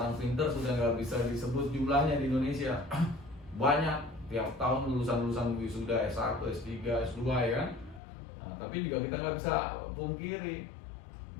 pinter sudah nggak bisa disebut jumlahnya di Indonesia. Banyak, tiap tahun lulusan wisuda S1, S3, S2 ya kan. Nah, tapi juga kita nggak bisa pungkiri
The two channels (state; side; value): drops out; right; at 8.0 s